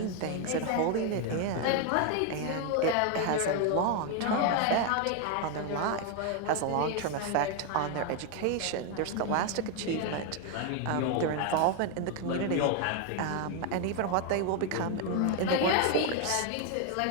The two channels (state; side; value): different; both; correlation 0.01